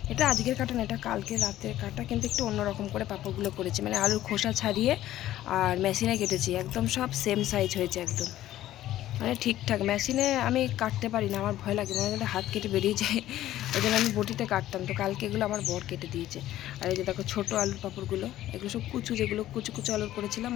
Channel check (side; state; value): right; quieter; 13.8 dB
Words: এটা আজকের কাটা না, এটা কালকে রাতের কাটা, কিন্তু একটু অন্যরকম করে পাঁপড়গুলো করেছি। মানে আলুর খোসা ছাড়িয়ে আর মেশিনে কেটেছি, একদম সব সেম সাইজ হয়েছে একদম। মানে ঠিকঠাক। মেশিনে আমি কাটতে পারি না, আমার ভয় লাগে, মনে হয় হাত কেটে বেরিয়ে যায়। ওই জন্য আমি বটিতে কাটতাম। তো কালকে এগুলো আমার বর কেটে দিয়েছে। আর এই যে দেখো ছোটো আলুর পাঁপড়গুলো, এগুলো সব কুচু, যেগুলো কুচু কুচু আলুর করেছিলাম,